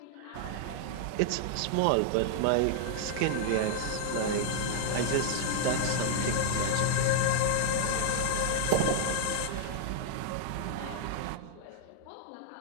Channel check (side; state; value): both; different; correlation -0.01